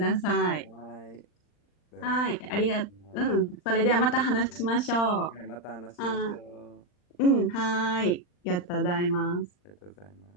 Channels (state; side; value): late; right; 39 ms